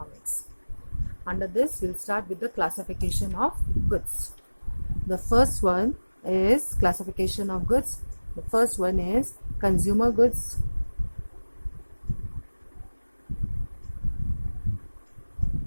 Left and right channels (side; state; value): both; inverted; correlation -1.00